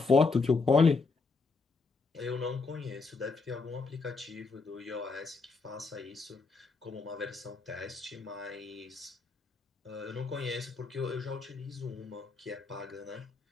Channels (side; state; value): right; quieter; 4.2 dB